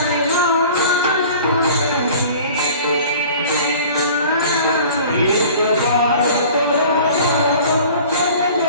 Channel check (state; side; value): inverted; both; correlation -0.45